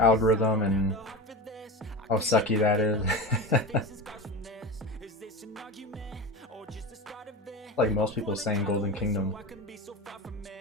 and how sucky that is. Like most people saying Golden Kingdom.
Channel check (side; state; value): both; normal; correlation 0.25